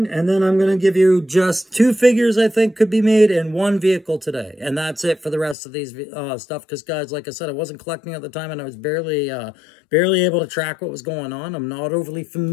and then I'm going to give you just 2 figures I think could be made and 1 vehicle today, and that's it for the rest of these stuff, because guys, like I said, I wasn't collecting at the time, and I was barely able to track what was going on. I'm not overly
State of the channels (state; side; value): drops out; right; at 5.6 s